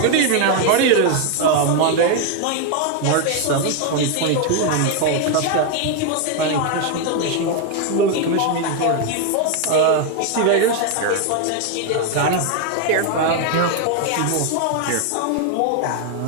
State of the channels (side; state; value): both; different; correlation 0.01